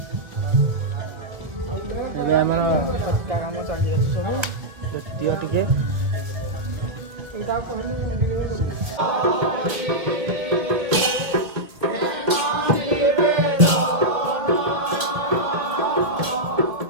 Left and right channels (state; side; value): late; left; 1.6 ms